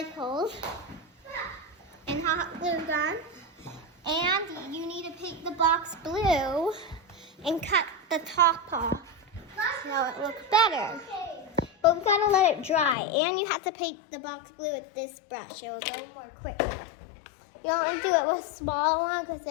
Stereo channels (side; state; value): right; drops out; at 13.0 s